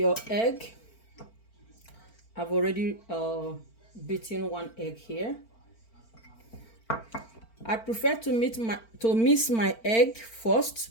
egg. I've already beaten 1 egg here. I prefer to mix my egg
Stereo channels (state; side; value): late; right; 4.4 ms